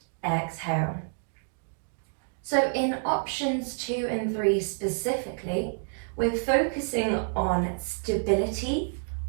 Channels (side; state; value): left; silent; digital silence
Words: exhale. So in options 2 and 3 specifically, we're focusing on stability